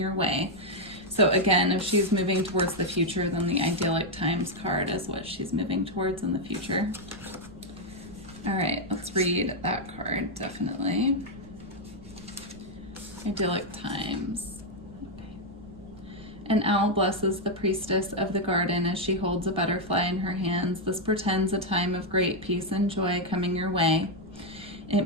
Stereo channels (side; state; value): right; noise; rumble, 20 dB below the sound